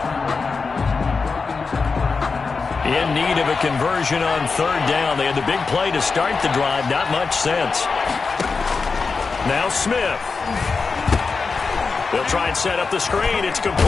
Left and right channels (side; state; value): right; quieter; 4.6 dB